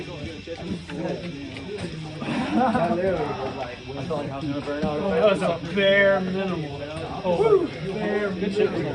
felt like I was gonna burn out. That was a bare minimal. Oh, bare Good shit.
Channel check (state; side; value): identical; both; correlation 1.00